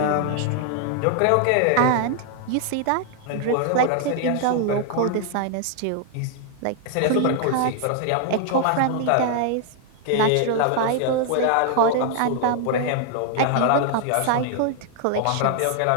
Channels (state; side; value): different; both; correlation 0.00